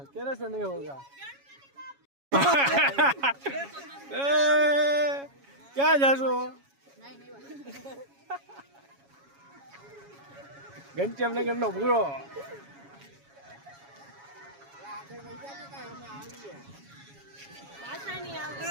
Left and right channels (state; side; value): late; left; 7.2 ms